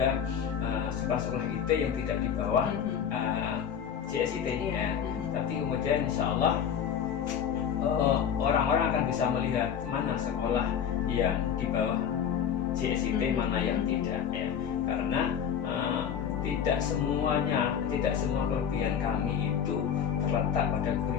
sekolah-sekolah IT yang tidak di bawah JSIT ya. Tapi kemudian insya Allah orang-orang akan bisa melihat mana sekolah yang di bawah JSIT, mana yang tidak ya. Karena tidak semua kelebihan kami itu terletak pada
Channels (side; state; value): right; quieter; 8.2 dB